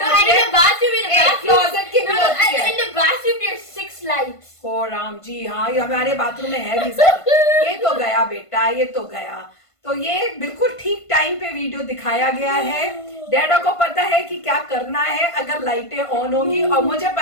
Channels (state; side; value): late; right; 1.5 ms